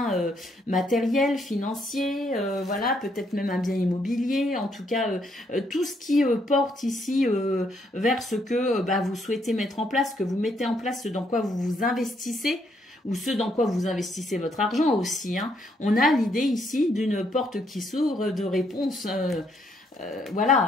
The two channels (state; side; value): normal; both; correlation 0.72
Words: matériel, financier, voilà, peut-être même un bien immobilier, en tout cas, tout ce qui porte ici vers ce que vous souhaitez mettre en place, que vous mettez en place, ce dans quoi vous vous investissez, ou ce dans quoi vous investissez votre argent aussi, hein. On a l'idée ici d'une porte qui s'ouvre, de réponse,